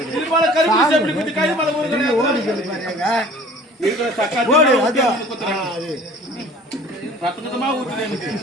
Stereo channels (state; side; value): normal; both; correlation 0.48